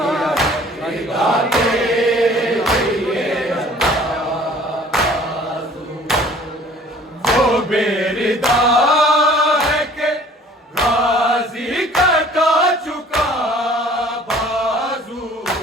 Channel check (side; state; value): both; normal; correlation 0.52